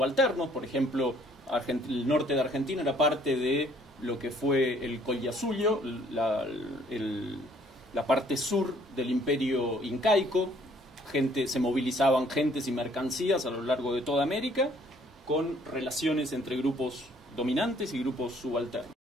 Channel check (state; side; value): normal; both; correlation 0.61